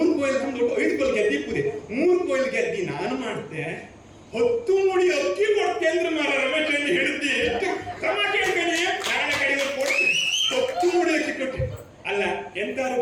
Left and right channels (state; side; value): identical; both; correlation 1.00